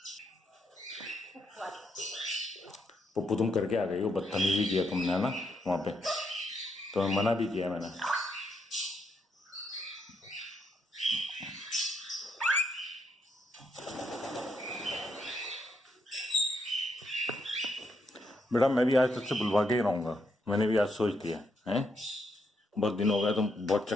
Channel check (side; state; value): both; normal; correlation 0.78